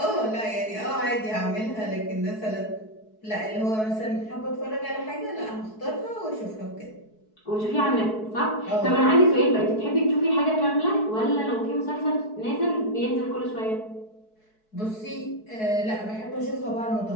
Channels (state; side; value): late; right; 4.6 ms